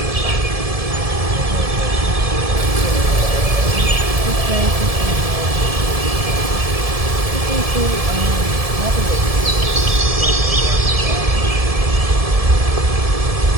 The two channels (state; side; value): late; left; 1.7 ms